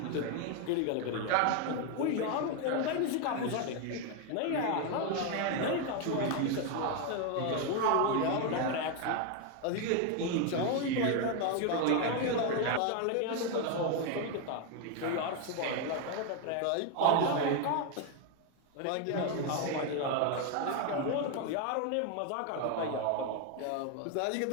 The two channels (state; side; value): different; both; correlation 0.01